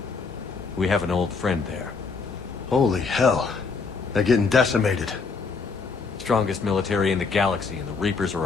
We have an old friend there. Holy hell. They're getting decimated. Strongest military in the galaxy, and the Reapers are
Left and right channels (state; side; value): quieter; right; 4.8 dB